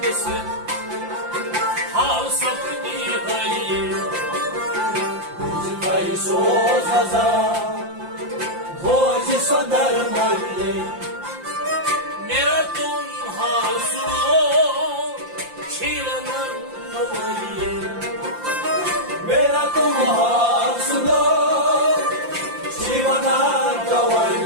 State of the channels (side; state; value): left; late; 5.8 ms